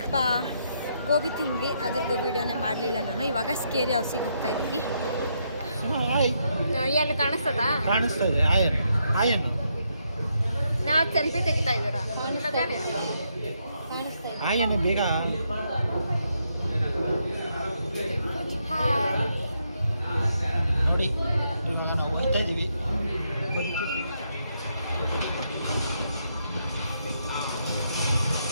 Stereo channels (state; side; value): inverted; both; correlation -0.78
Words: ಗೋಬಿ ತಿಂದ್ವಿ, ಅದ್ರದ್ದು ವೀಡಿಯೋನೇ ಮಾಡಲಿಲ್ಲ ನಾನು. ಇವಾಗ ಸ್ಕೇರಿ ಹೌಸಿಗೆ ಹೋಗ್ತಾ ಇದ್ದೀವಿ. ಎಲ್ಲಿ ಕಾಣಿಸ್ತದ? ಕಾಣಿಸ್ತಾ ಇದೆ ಆಯನ್ ನಾವು ಸೆಲ್ಫಿ ತೆಗಿತಾ ಇದ್ದೀರಾ? ಕಾಣಿಸ್ತಾ ಇದೆ. ಆಯನ್ ಬೇಗ ನೋಡಿ. ಇವಾಗ ನಾವು ಹೋಗ್ತಾ ಇದ್ದೀವಿ.